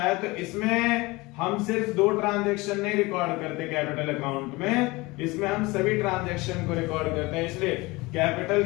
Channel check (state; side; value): quieter; right; 22.9 dB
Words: तो इसमें हम सिर्फ 2 ट्रांजैक्शन नहीं रिकॉर्ड करते कैपिटल अकाउंट में, इसमें हम सभी ट्रांजैक्शन को रिकॉर्ड करते हैं। इसलिए कैपिटल